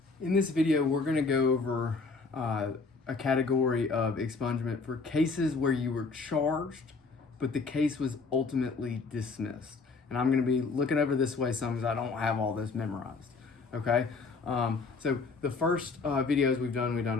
In this video, we're going to go over a category of expungement for cases where you were charged, but the case was ultimately dismissed. And I'm going to be looking over this way some because I don't have all this memorized. Okay, so the first videos we've done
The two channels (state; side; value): quieter; right; 4.4 dB